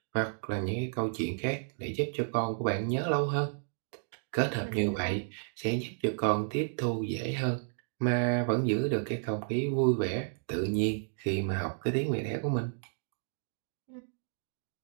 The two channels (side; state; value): left; silent; digital silence